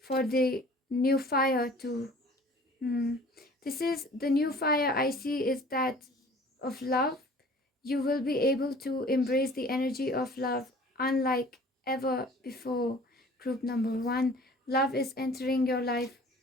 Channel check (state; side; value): normal; both; correlation 0.49